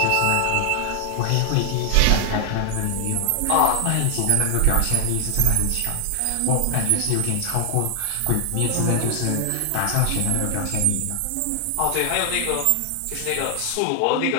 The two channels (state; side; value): different; both; correlation 0.00